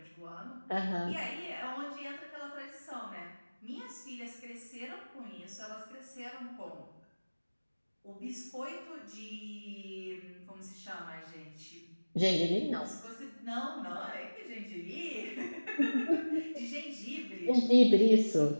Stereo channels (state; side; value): inverted; both; correlation -1.00